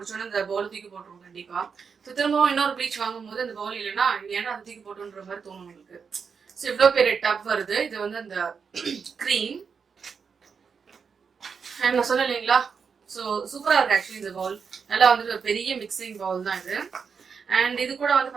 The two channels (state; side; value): quieter; left; 6.0 dB